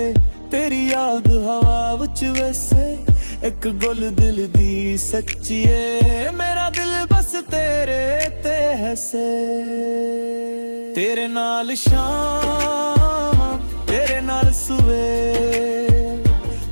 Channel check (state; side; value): inverted; both; correlation -1.00